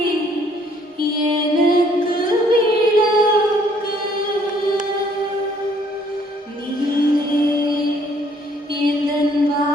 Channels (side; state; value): both; normal; correlation 0.63